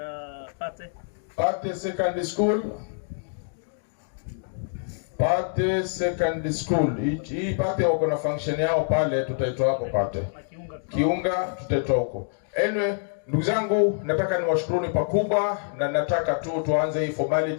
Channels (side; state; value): right; silent; digital silence